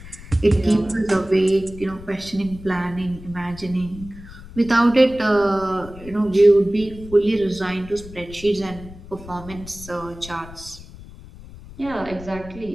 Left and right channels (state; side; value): noise; left; rumble, 16 dB below the sound